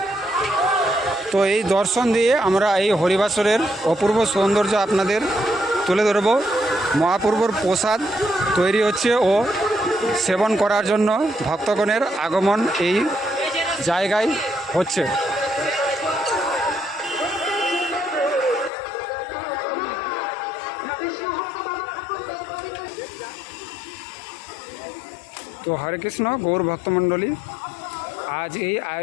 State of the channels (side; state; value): right; drops out; at 18.7 s